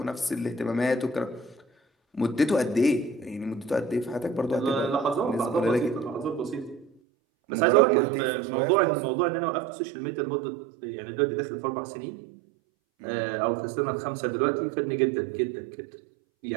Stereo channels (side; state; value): left; drops out; at 6.9 s